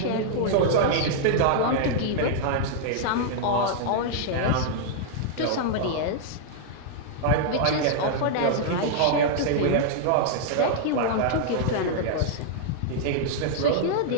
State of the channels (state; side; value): different; both; correlation -0.01